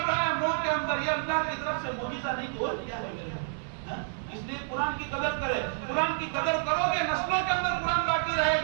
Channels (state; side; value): silent; left; digital silence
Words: رہا ہے منہ کے اندر, یہ اللہ کی طرف سے معجزہ نہیں تو اور کیا ہے میرے. اس لیے قرآن کی قدر کرے. قرآن کی قدر کرو گے نسلوں کے اندر قرآن باقی رہے